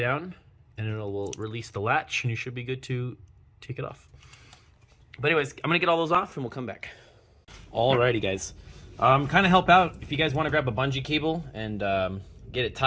and it will release the latch, and you should be good to take it off. But anyways, I'm gonna get all those off and we'll come back. Alrighty guys, kind of help out if you guys want to grab a bungee cable and get it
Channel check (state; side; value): identical; both; correlation 1.00